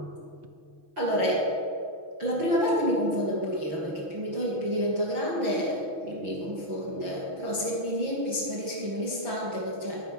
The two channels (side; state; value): left; late; 6.2 ms